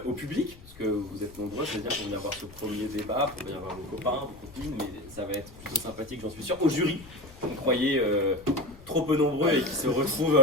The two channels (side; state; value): left; noise; rumble, 20 dB below the sound